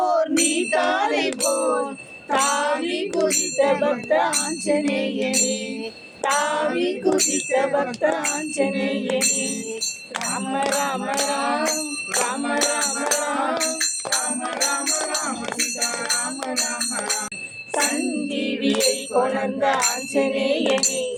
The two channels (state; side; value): identical; both; correlation 1.00